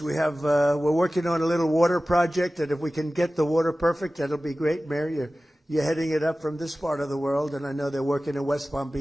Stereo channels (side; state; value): both; normal; correlation 0.96